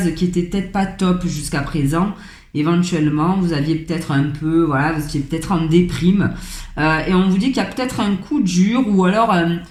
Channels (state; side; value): identical; both; correlation 1.00